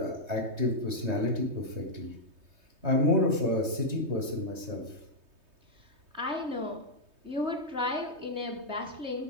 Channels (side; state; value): left; late; 3.2 ms